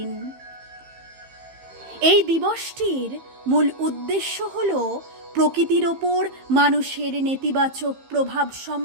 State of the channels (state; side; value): late; left; 15 ms